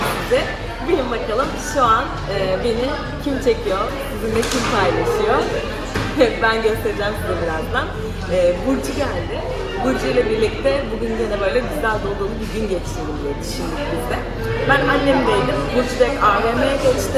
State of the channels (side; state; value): both; identical; correlation 1.00